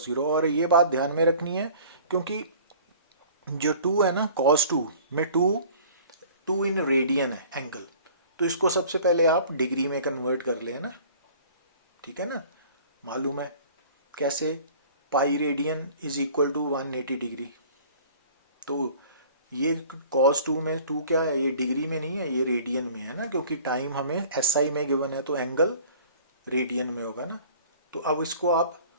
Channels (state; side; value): inverted; both; correlation -0.48